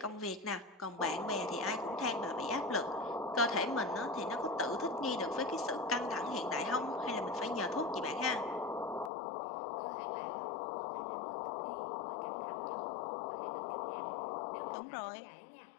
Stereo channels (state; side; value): drops out; right; at 9.1 s